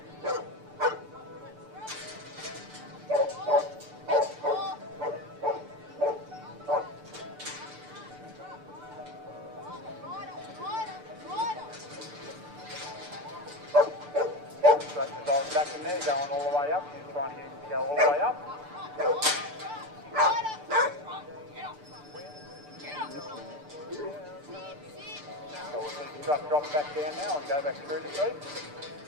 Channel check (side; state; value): left; late; 6.8 ms